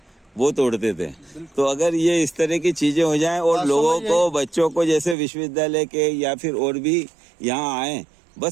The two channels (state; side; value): drops out; left; at 5.2 s